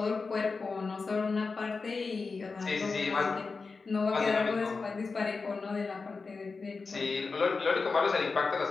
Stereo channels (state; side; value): quieter; right; 4.4 dB